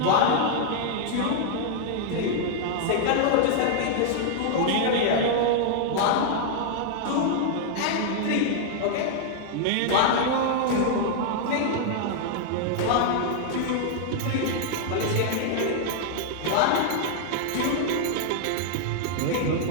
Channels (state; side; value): different; both; correlation -0.01